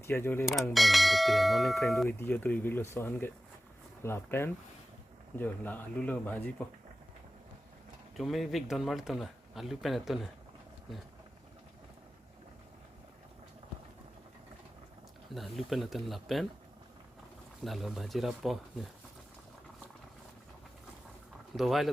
jo le bang ke non ne kren do hitia to iglo sohan ke la pen jo la alu lo bhaji po cuma vik don malit tum la alu pen to na na alu pen to la pen la lo bhaji rapo do vai le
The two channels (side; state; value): both; normal; correlation 0.95